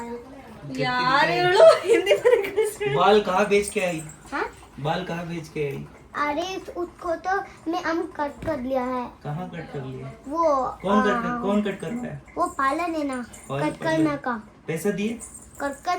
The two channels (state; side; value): identical; both; correlation 1.00